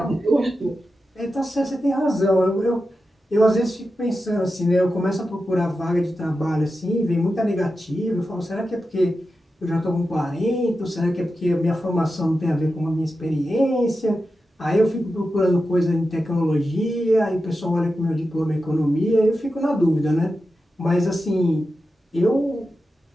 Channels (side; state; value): both; normal; correlation 0.91